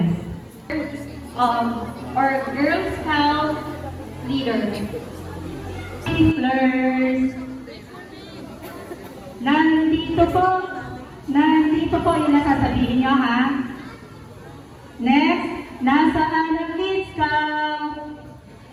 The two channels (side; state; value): both; identical; correlation 1.00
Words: Or Girl Scout leader. Twinklers. Nandito po yung nasasabihin nyo, ha? Next, nasaan ang Kid Scout?